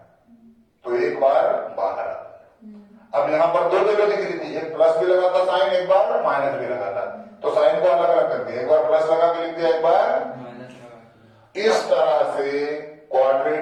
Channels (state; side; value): identical; both; correlation 1.00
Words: तो एक बार बाहर आता है। अब यहां पर 2 वैल्यू दिख रही थी, एक प्लस भी लगा था साइन, एक बार माइनस भी लगा था, तो साइन को अलग अलग कर दिया, एक बार प्लस लगा के लिख दिया, एक बार माइनस लगा। इस तरह से